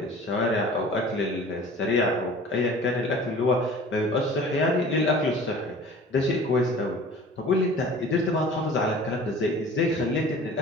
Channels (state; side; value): normal; both; correlation 0.44